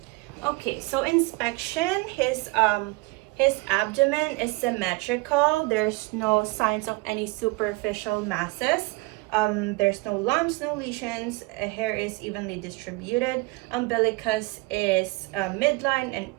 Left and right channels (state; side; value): quieter; left; 24.7 dB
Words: Okay, so inspection, his abdomen is symmetrical. There's no signs of any superficial masses. There's no lumps, no lesions. Hair is evenly distributed. Umbilicus is midline and